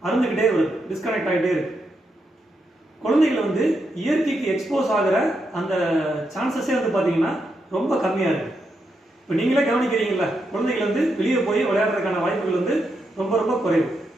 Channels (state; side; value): normal; both; correlation 0.83